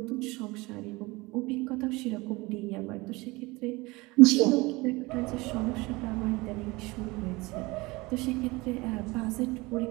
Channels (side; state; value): left; quieter; 22.9 dB